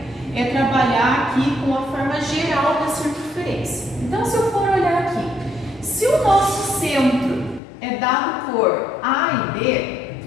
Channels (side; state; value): right; drops out; at 7.6 s